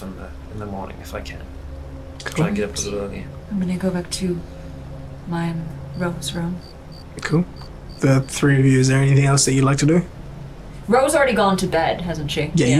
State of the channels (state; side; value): identical; both; correlation 1.00